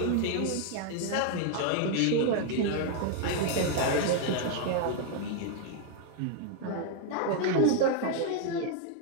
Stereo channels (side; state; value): both; different; correlation 0.00